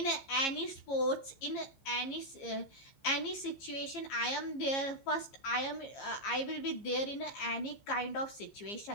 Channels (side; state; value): right; late; 15 ms